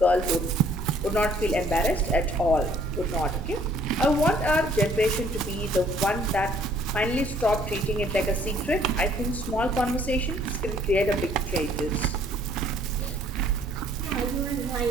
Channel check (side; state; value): both; normal; correlation 0.60